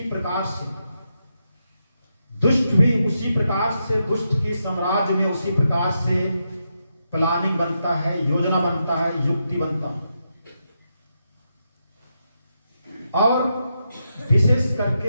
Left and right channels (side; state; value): both; inverted; correlation -0.84